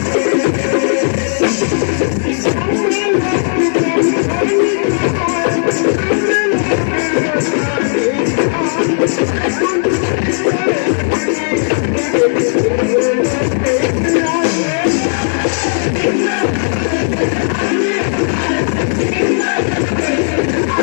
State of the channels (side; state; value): right; silent; digital silence